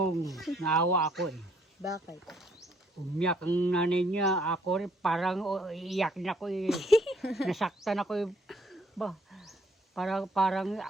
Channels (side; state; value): both; normal; correlation 0.66